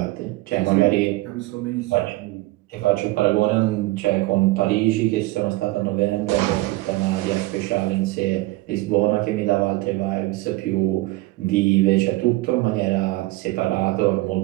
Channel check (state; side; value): quieter; left; 20.2 dB